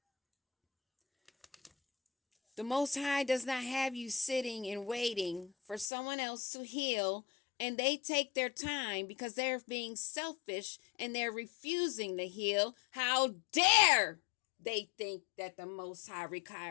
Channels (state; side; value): drops out; right; at 5.9 s